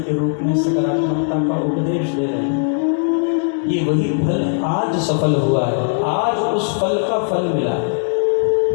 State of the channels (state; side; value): silent; right; digital silence